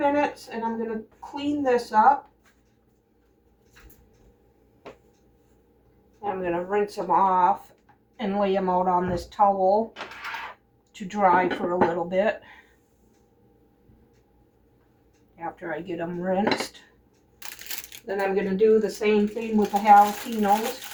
and I'm going to clean this up. I'm going to rinse them off and lay them out on this towel to dry for a little bit after I get them rinsed. Then I'm going to do the same thing with the jalapenos.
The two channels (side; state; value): both; identical; correlation 1.00